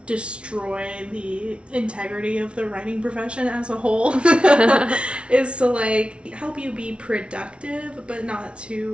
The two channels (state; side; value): late; left; 0.059 ms